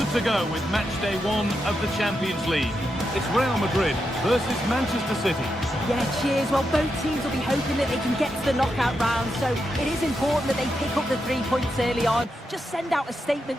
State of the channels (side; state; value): both; normal; correlation 0.85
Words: to go with match day 1 of the Champions League. It's Real Madrid versus Manchester City. Yeah, cheers. Well, both teams will be hoping that they can get to the knockout round, so it is important that they pick up the 3 points early on. Just send out a